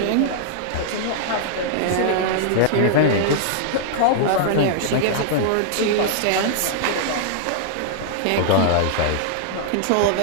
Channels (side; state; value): both; different; correlation -0.01